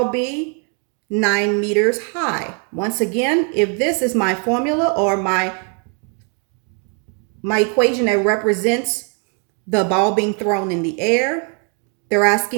be? 9 meters high. Once again, if this is my formula or my equation that represents the ball being thrown in the air, they're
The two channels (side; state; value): left; quieter; 38.7 dB